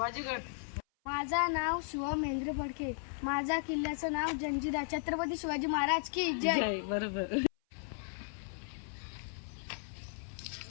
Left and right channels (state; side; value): silent; right; 54 dB below the other